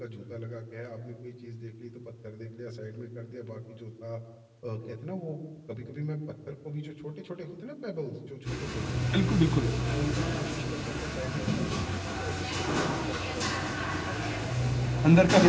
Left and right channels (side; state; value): both; identical; correlation 1.00